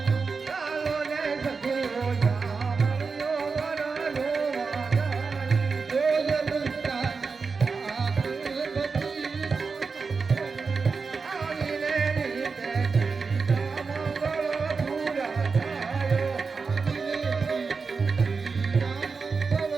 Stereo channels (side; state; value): left; quieter; 4.8 dB